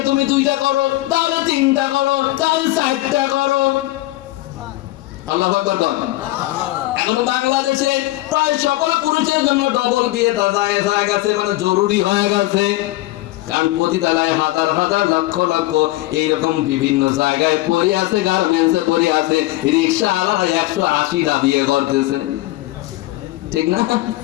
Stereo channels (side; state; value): right; quieter; 18.1 dB